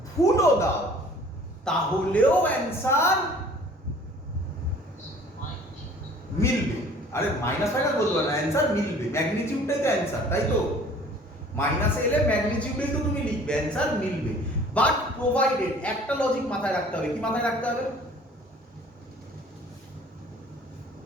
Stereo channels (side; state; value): both; normal; correlation 0.51